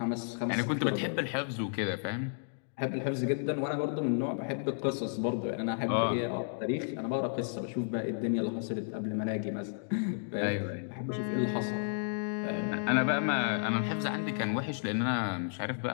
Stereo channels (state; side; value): silent; right; digital silence